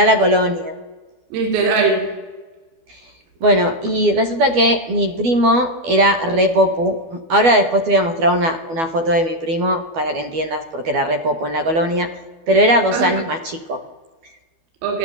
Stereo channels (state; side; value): late; left; 12 ms